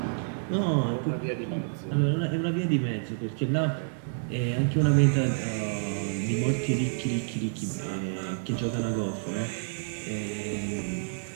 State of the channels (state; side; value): silent; left; digital silence